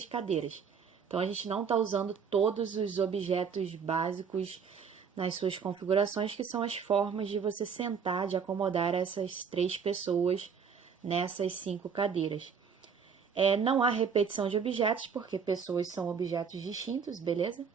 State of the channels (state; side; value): quieter; left; 6.4 dB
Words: cadeiras. Então, a gente não está usando todos os objetos básicos nas suas configurações, que são as formas de você sentar, de acomodar essas 3 pessoas nessas 5 cadeiras. Não há repetição de objetos, porque pessoas são objetos distintos, beleza?